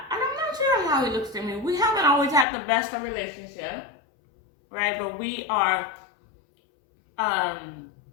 sure how he looks to me. We haven't always had the best of relationship, right? But we are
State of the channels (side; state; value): right; drops out; at 2.5 s